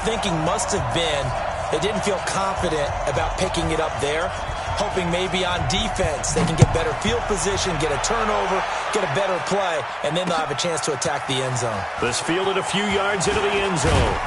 thinking must have been they didn't feel confident about picking it up there, hoping maybe on defense they can get better field position, get a turnover, get a better play, and then they'll have a chance to attack the end zone. This fielded a few yards into the end zone.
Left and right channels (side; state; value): both; identical; correlation 1.00